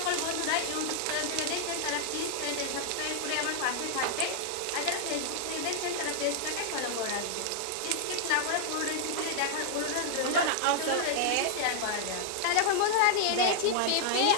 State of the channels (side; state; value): both; different; correlation -0.01